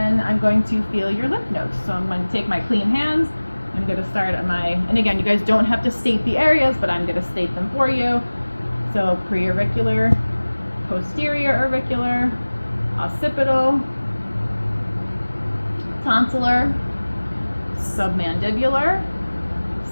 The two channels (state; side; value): inverted; both; correlation -1.00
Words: I'm going to feel your lymph nodes. So I'm going to take my clean hands. I'm going to start at and again, you guys don't have to state the areas, but I'm going to state them for you. So preauricular, posterior auricular, occipital, tonsillar, submandibular,